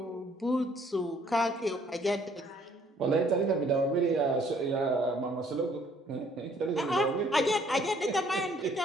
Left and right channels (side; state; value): both; normal; correlation 0.62